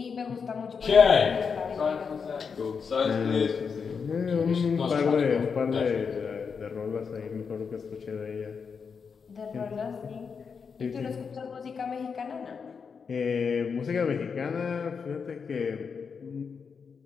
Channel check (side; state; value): right; quieter; 5.9 dB